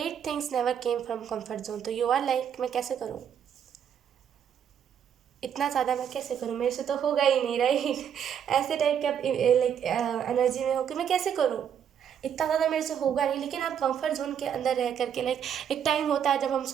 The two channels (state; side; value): quieter; left; 8.6 dB